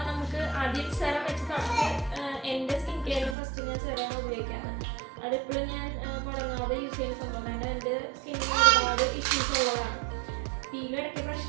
നമുക്ക് ആദ്യം സെറം വെച്ച് തുടങ്ങി. എൻ്റെ സ്കിൻ കെയറിന് ഫസ്റ്റ് ഞാൻ സെറമാണ് ഉപയോഗിക്കാറ്. അതെപ്പോഴും ഞാൻ മുടങ്ങാതെ യൂസ് ചെയ്യുന്ന സംഭവം. കാരണം എൻ്റെ സ്കിന്നിന് ഒരുപാട് ഇഷ്യൂസ് ഉള്ളതാണ്. പീലും ഇടയ്ക്ക്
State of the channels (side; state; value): left; drops out; at 3.4 s